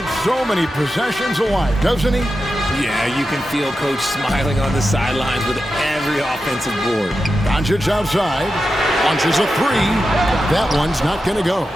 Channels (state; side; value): normal; both; correlation 0.90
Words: so many possessions alive, doesn't he? Yeah, you can feel Coach smiling on the sidelines with every offensive board. Doncic outside. Launches a 3. That one's not going to go.